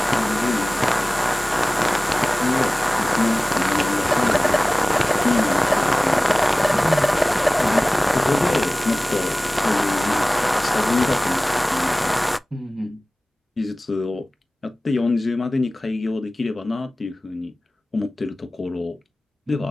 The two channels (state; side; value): normal; both; correlation 0.98